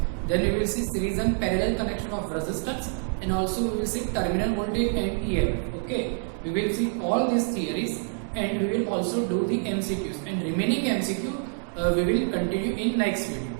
then we will see series and parallel connection of resistance, and also we will see terminal voltage and EMF. Okay, we will see all these theories and we will also do the MCQs, and remaining MCQ we will continue in next video.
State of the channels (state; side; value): silent; left; 58 dB below the other